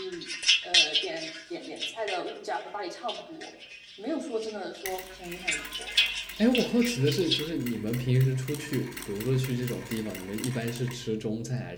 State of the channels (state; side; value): identical; both; correlation 1.00